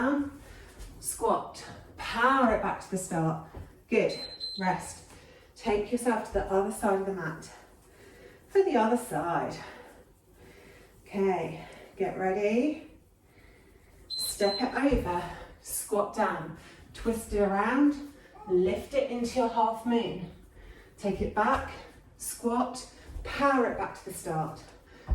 squat, power it back to the start. Good, rest. Take yourself to the other side of the mat. For the other side. Okay, get ready. Step it over, squat down, twist it around, lift it into your half moon. Take it back, squat, power it back to the start.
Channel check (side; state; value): both; identical; correlation 1.00